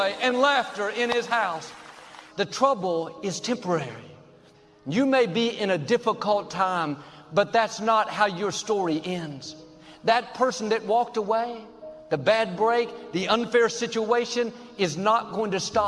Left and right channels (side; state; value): both; identical; correlation 1.00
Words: and laughter in his house. The trouble is temporary. You may be in a difficult time, but that's not how your story ends. That person that walked away, the bad break, the unfair situation is not going to